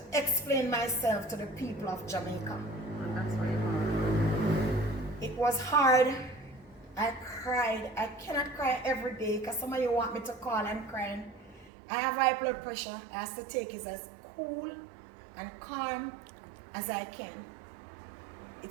explain myself to the people of Jamaica. And that's what you want. It was hard. I cried. I cannot cry every day because some of you want me to call and crying. I have high blood pressure. I have to take it as cool and calm as I can.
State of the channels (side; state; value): left; drops out; at 11.7 s